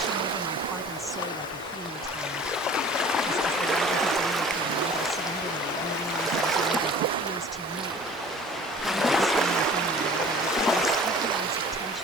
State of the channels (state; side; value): normal; both; correlation 0.46